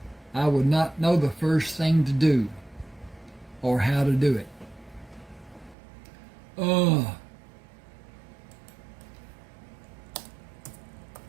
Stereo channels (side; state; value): left; drops out; at 5.8 s